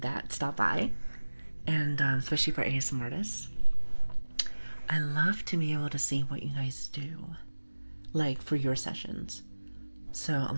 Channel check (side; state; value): both; inverted; correlation -1.00